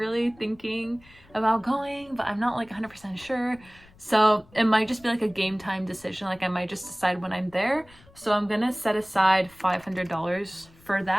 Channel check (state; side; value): noise; left; rumble, 26 dB below the sound